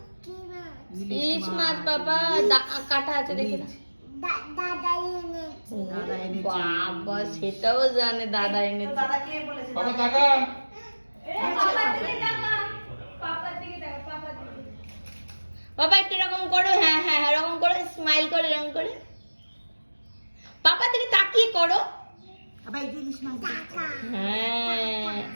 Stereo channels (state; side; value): inverted; both; correlation -1.00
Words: ইলিশ মাছ বাবা কাটা আছে দেখি না। দাদা এনেছে। বাবা সেটাও জানে দাদা এনেছে। দাদা কে বলেছে? বাবা টাকা। বাবা একটু এরকম করো, হ্যাঁ হ্যাঁ এরকম করে স্মাইল করে এরকম করে পাপা দিকে তাকিয়ে করো। আবার এই যে ইলিশ মাছ দিয়েছে। হ্যাঁ